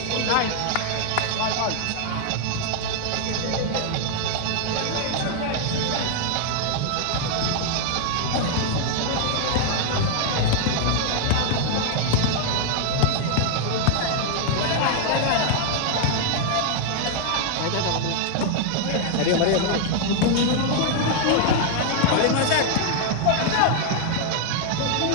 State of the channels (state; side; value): different; both; correlation 0.00